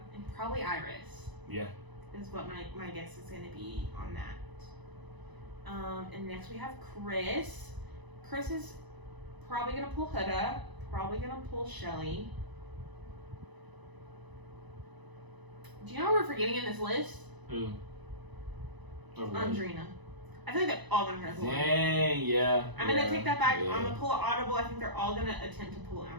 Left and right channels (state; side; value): late; left; 1.0 ms